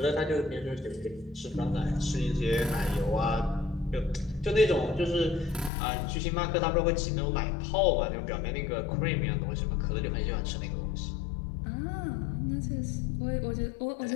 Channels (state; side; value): drops out; right; at 5.7 s